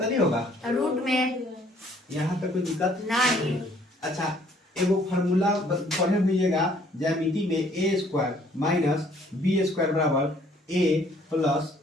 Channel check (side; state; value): both; normal; correlation 0.61